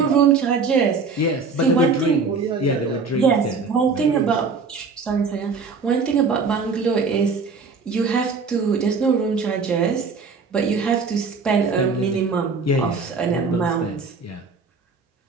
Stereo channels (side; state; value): left; quieter; 4.6 dB